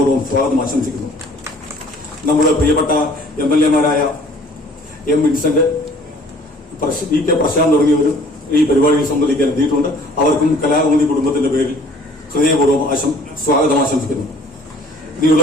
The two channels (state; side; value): normal; both; correlation 0.53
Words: സ്വാഗതം ആശംസിക്കുന്നു. നമ്മുടെ പ്രിയപ്പെട്ട MLA മാരായ M. വിൻസെന്റ്, VK പ്രശാന്ത് തുടങ്ങിയവരും ഈ പരിപാടിയിൽ സംബന്ധിക്കാൻ എത്തിയിട്ടുണ്ട്. അവർക്കും കലാകൗമുദി കുടുംബത്തിന്റെ പേരിൽ ഹൃദയപൂർവ്വം സ്വാഗതം ആശംസിക്കുന്നു.